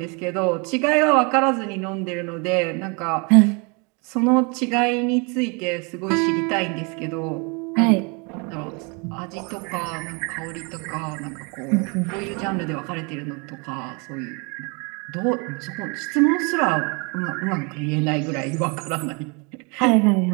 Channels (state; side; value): quieter; left; 31.9 dB